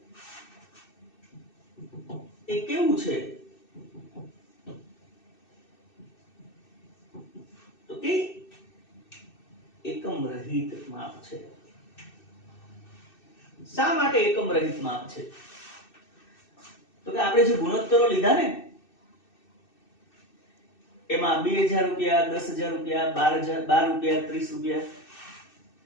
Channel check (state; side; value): late; right; 2.6 ms